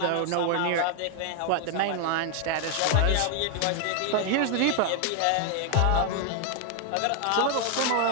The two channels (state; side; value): different; both; correlation 0.01